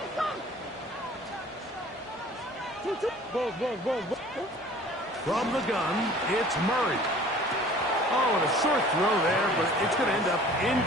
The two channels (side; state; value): both; normal; correlation 0.49